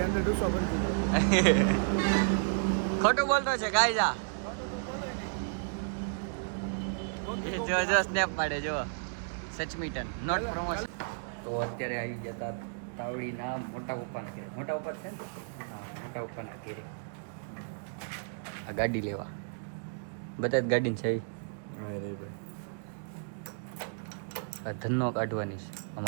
અંદર ડૂસો ભરી દીધો. ખોટું બોલતો છે ગાયજા. જો સ્નેપ પાડે જો. સચમીટન નોટ પ્રમોશન. તો અત્યારે આવી જતા તાવડીના મોટા પપ્પાના ઘરે. મોટા પપ્પા છે ને? હા મોટા પપ્પાના ઘરે આ ગાડી લેવા. બધા જ ગાડી છે. ધનનો કાઢવાની છે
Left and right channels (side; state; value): left; silent; digital silence